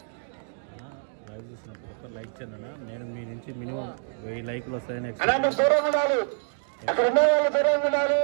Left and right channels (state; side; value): silent; left; digital silence